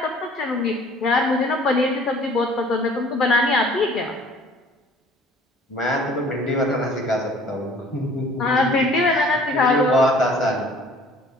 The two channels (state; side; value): normal; both; correlation 0.53